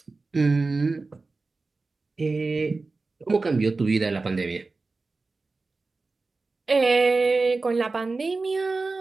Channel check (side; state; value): left; quieter; 3.7 dB